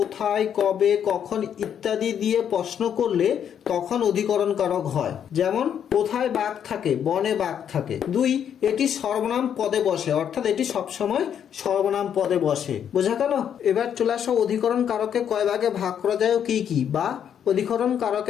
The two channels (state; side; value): quieter; right; 8.8 dB